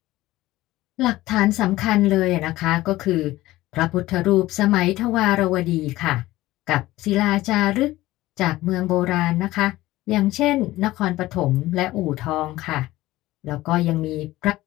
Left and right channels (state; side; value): quieter; right; 17.1 dB